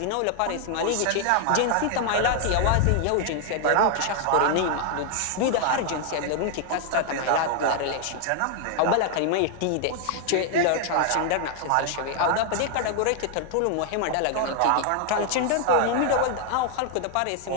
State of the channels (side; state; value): both; different; correlation 0.00